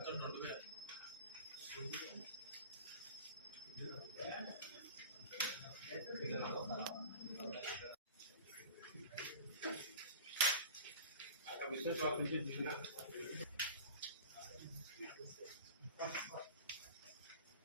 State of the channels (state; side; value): inverted; both; correlation -0.37